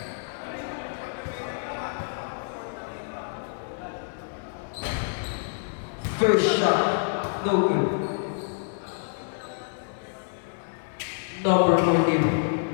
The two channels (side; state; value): right; silent; 55 dB below the other